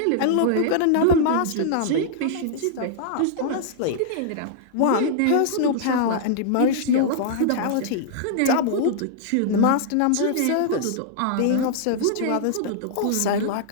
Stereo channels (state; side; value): different; both; correlation -0.01